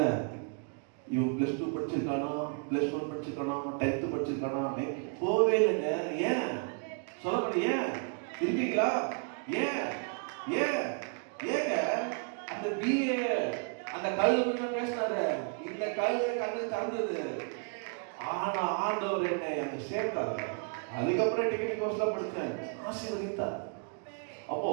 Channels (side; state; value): left; quieter; 39.3 dB